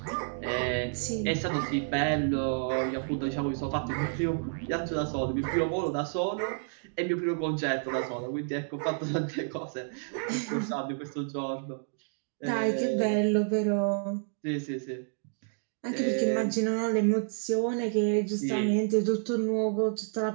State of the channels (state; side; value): silent; left; digital silence